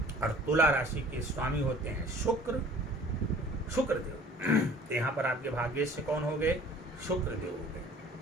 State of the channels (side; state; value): both; normal; correlation 0.49